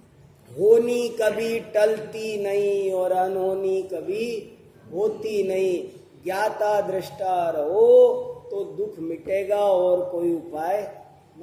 होनी कभी टलती नहीं और अनहोनी कभी होती नहीं। ज्ञाता दृष्टा रहो तो दुख मिटेगा और कोई उपाय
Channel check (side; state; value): both; identical; correlation 1.00